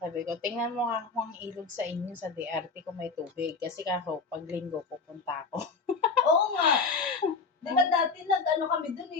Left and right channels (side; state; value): right; quieter; 4.5 dB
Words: Sabi ko, tingnan mo nga kung ang ilog sa inyo sa DRT kung may tubig. Kasi kako, pag linggo, pupunta ako. Oo nga. Di ba dati kami